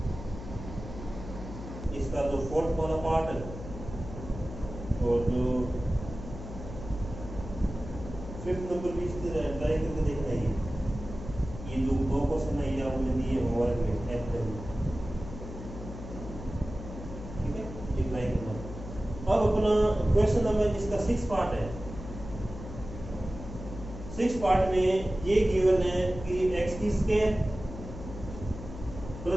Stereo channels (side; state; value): left; noise; hum, 10 dB below the sound